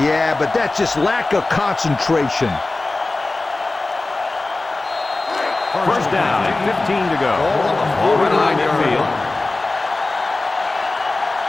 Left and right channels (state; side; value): quieter; right; 3.2 dB